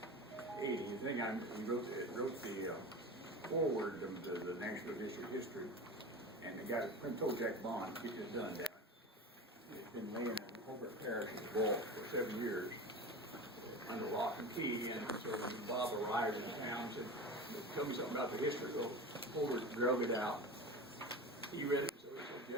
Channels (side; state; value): both; normal; correlation 0.30